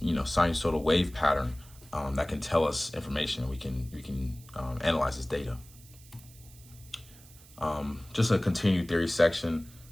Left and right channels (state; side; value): noise; right; hiss, 22 dB below the sound